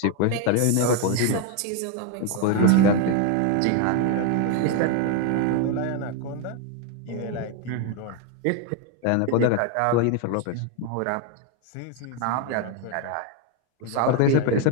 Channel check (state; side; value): different; both; correlation 0.01